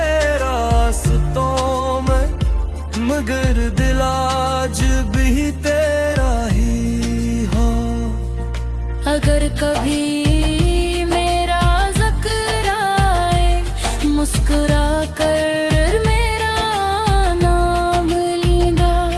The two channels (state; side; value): identical; both; correlation 1.00